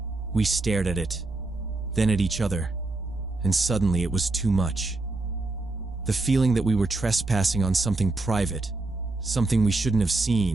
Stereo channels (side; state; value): left; quieter; 3.1 dB